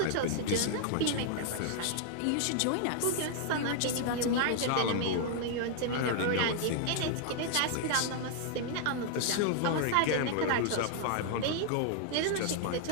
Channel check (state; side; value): different; both; correlation 0.00